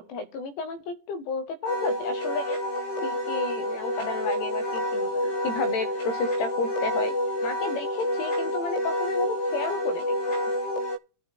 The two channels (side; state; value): right; late; 18 ms